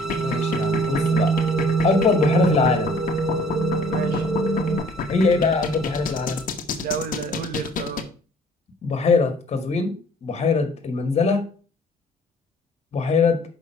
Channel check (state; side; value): normal; both; correlation 0.55